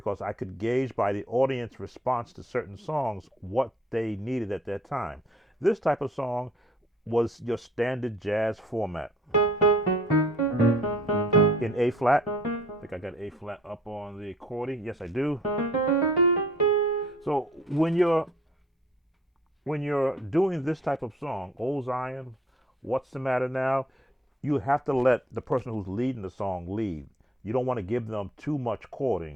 I could gauge by the audience response to certain songs what they needed at that time. This type of song was your standard jazz format in A flat. I think I got A flat up on the accordion. Yes, I do. So when you're doing this type of song, Old Zion, What's the Matter Now, you have to let the person who's leading the song lead. You don't want to give them too much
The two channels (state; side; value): normal; both; correlation 0.57